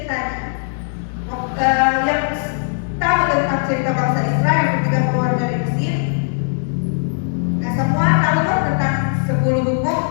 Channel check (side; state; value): right; silent; digital silence